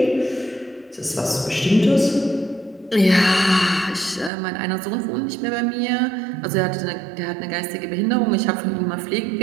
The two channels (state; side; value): drops out; left; at 4.3 s